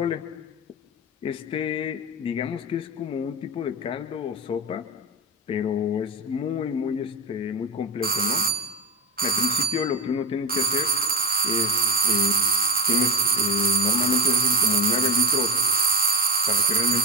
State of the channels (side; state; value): both; normal; correlation 0.21